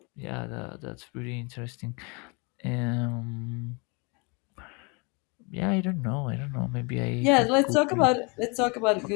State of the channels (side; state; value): right; quieter; 31.0 dB